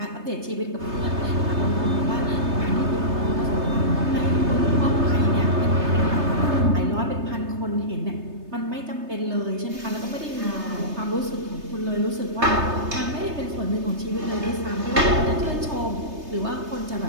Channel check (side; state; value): left; late; 3.3 ms